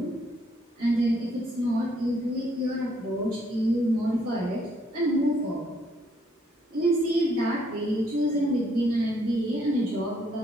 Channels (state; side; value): normal; both; correlation 0.69